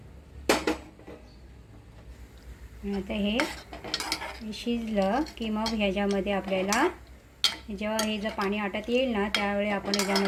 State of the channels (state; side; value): identical; both; correlation 1.00